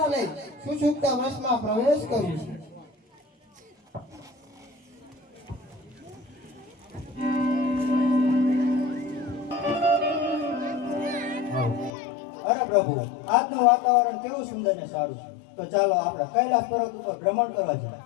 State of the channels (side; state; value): right; drops out; at 11.9 s